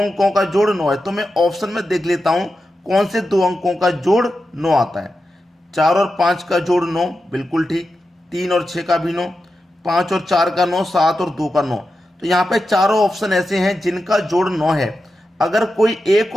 का जोड़ 9 है। तो मैं ऑप्शन में देख लेता हूं कौन से दो अंकों का जोड़ 9 आता है। 4 और 5 का जोड़ 9, बिल्कुल ठीक। 3 और 6 का भी 9, 5 और 4 का 9, 7 और 2 का 9। तो यहाँ पे चारों ऑप्शन ऐसे हैं जिनका जोड़ 9 है। अगर कोई एक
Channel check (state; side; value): normal; both; correlation 0.90